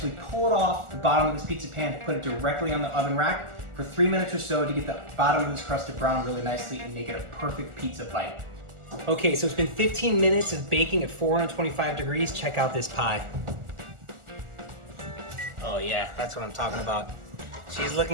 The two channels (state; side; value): late; left; 1.4 ms